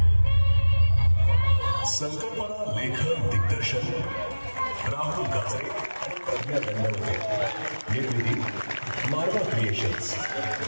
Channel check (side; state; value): both; inverted; correlation -1.00